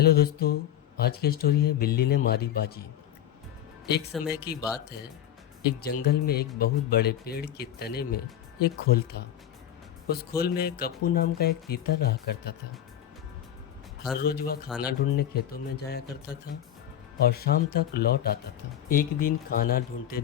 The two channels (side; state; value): right; quieter; 10.9 dB